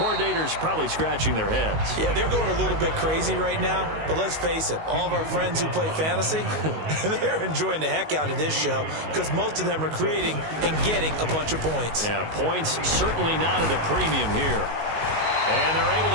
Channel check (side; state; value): left; late; 19 ms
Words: probably scratching their heads. Yeah, they're going a little bit crazy right now. But let's face it, all of our friends who play fantasy, they're enjoying the heck out of this show because most of them are creating and getting a bunch of points. Yeah, points certainly not at a premium here. And they're able